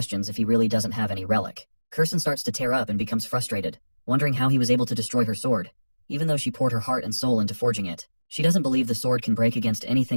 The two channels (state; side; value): inverted; both; correlation -1.00